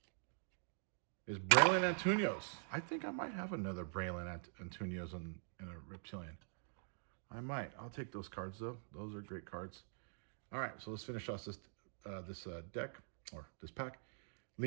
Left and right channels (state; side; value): silent; left; digital silence